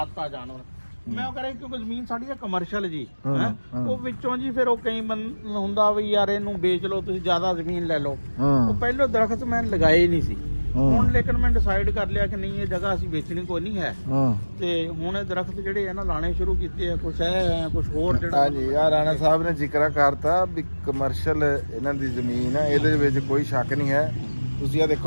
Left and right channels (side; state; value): both; inverted; correlation -1.00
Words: ਆ ਜਾਨਵਰ। ਮੈਂ ਉਹ ਕਰਾਂ ਕਿਉਂਕਿ ਜ਼ਮੀਨ ਸਾਡੀ ਆ ਕਮਰਸ਼ੀਅਲ ਜੀ, ਉਹ ਵਿੱਚੋਂ ਜੀ ਫਿਰ ਉਹ ਕਈ ਹੁੰਦਾ ਵੀ ਯਾਰ ਇਹਨੂੰ ਵੇਚ ਲਓ ਤੁਸੀਂ, ਜ਼ਿਆਦਾ ਜ਼ਮੀਨ ਲੈ ਲਓ। ਉਹ ਪਹਿਲੋਂ ਦਰਖਤ ਮੈਂ ਲਗਾਏ ਨਹੀਂ ਸੀ, ਹੁਣ ਲੇਕਿਨ ਮੈਂ ਡਿਸਾਈਡ ਕਰ ਲਿਆ ਕਿ ਨਹੀਂ ਇਹ ਜਗ੍ਹਾ ਅਸੀਂ ਵੇਚਣੀ ਕੋਈ ਨਹੀਂ ਹੈ, ਤੇ ਹੁਣ ਇਹ ਦਰਖਤ ਜਿਹੜੇ ਆ ਨਾ ਲਾਣੇ ਸ਼ੁਰੂ ਕੀਤੇ ਆ। ਕੁਛ ਹੈ ਕੁਛ ਹੋਰ ਜਿਹੜਾ ਹਾਂਜੀ ਯਾਰ ਰਾਣਾ ਸਾਹਿਬ ਨੇ ਜ਼ਿਕਰ ਕਰਤਾ ਵੀ ਕਮਰਸ਼ੀਅਲ ਇਹਨਾਂ ਦੀ ਜ਼ਮੀਨ ਹੈ, ਇਹਦੇ ਵਿੱਚ ਕੋਈ ਸ਼ੱਕ ਨਹੀਂ ਹੈ। ਤੁਸੀਂ ਆ